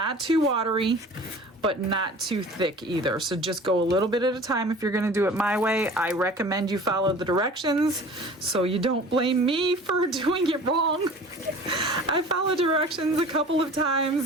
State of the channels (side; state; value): both; normal; correlation 0.43